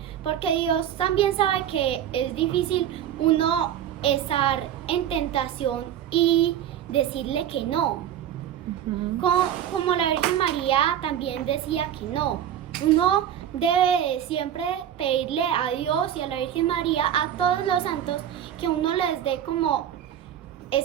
porque Dios también sabe que es difícil uno estar en tentación y decirle que no. Como la Virgen María también decía que no. Uno debe de siempre pedirle a Dios y a la Virgen María, a todos los santos, que uno les dé como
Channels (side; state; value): left; quieter; 10.3 dB